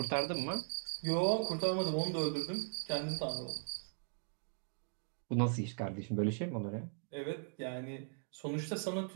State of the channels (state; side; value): silent; left; 52 dB below the other